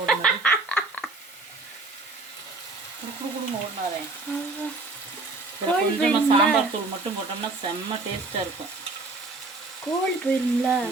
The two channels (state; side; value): quieter; left; 3.4 dB